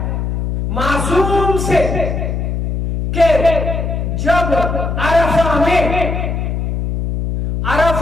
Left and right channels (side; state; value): left; noise; hum, 2 dB below the sound